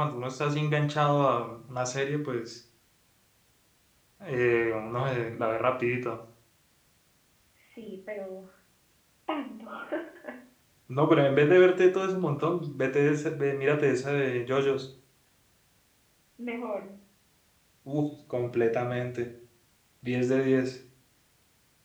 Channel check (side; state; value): both; identical; correlation 1.00